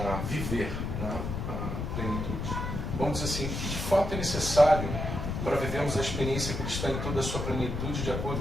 viver, né, a plenitude. Vamos dizer assim, o que de fato é necessário para vivermos a experiência cristã em toda a sua plenitude, de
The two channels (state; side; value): noise; left; rumble, 3 dB below the sound